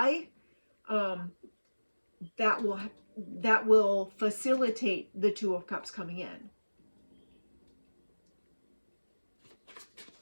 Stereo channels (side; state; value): both; inverted; correlation -1.00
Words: That will facilitate the Two of Cups coming in.